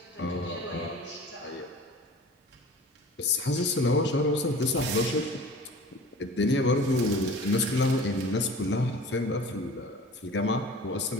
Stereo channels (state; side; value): normal; both; correlation 0.42